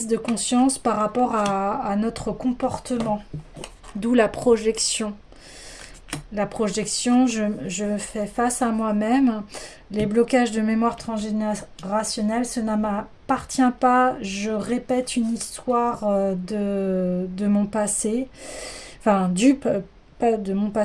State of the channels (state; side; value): identical; both; correlation 1.00